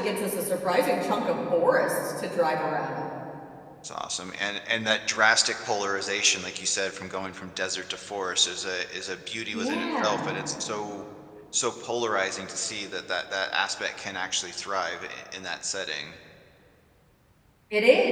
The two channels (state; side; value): identical; both; correlation 1.00